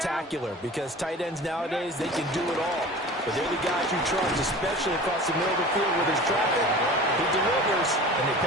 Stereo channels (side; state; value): both; normal; correlation 0.39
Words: because tight ends nowadays, they can do it all. But they're the guys you trust, especially across the middle of the field with his traffic. He delivers, and they